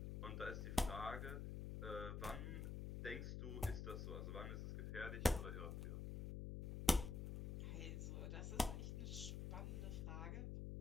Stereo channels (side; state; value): left; noise; hum, 3 dB below the sound